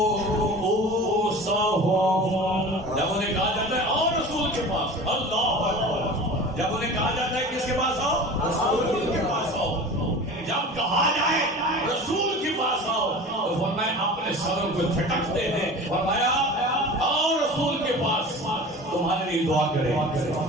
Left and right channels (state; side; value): normal; both; correlation 0.37